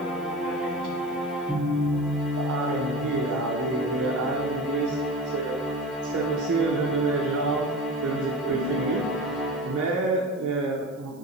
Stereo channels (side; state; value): right; noise; hiss, 28 dB below the sound